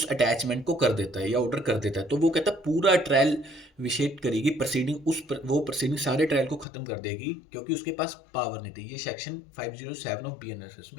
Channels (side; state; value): right; drops out; at 6.7 s